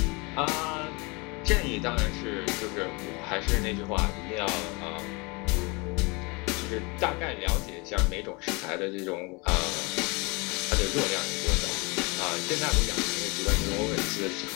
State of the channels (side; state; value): right; quieter; 28.1 dB